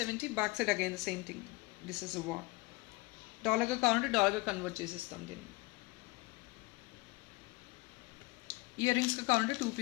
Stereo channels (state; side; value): quieter; right; 23.3 dB